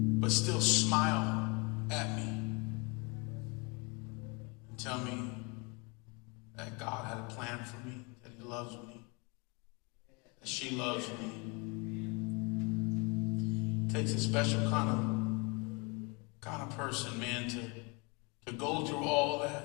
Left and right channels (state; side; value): quieter; right; 29.0 dB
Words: but still smile at me and tell me that God had a plan for me, that He loves me, that she loves me. It takes a special kind of person, man, to go through all